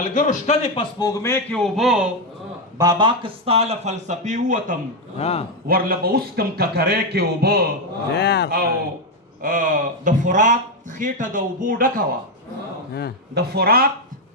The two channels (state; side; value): normal; both; correlation 0.05